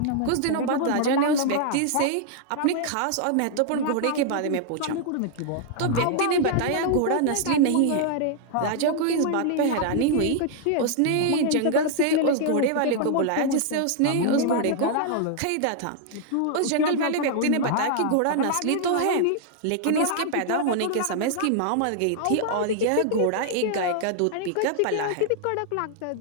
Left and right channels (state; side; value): different; both; correlation -0.01